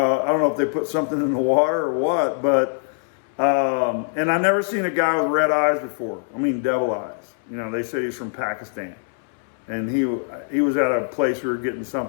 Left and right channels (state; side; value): silent; right; 64 dB below the other